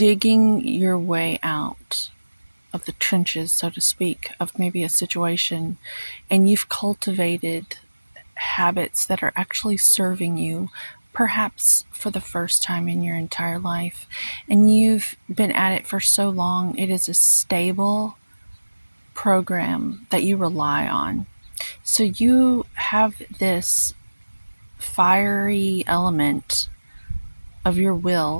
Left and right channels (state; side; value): inverted; both; correlation -1.00